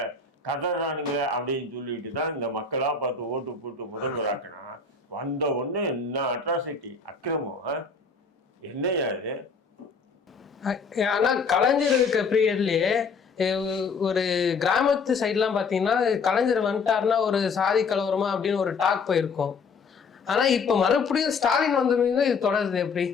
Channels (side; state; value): right; quieter; 4.8 dB